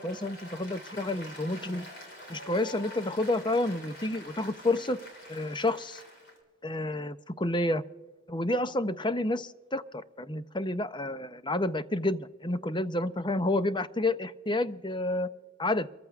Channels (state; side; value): normal; both; correlation 0.59